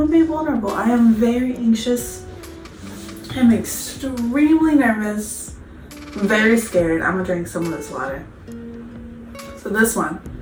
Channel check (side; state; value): both; identical; correlation 1.00